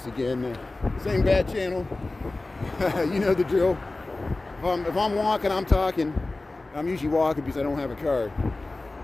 again. Same bat channel. You know the drill. If I'm walking, I'm talking. I'm usually walking because I don't have a car.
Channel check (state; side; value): quieter; right; 3.1 dB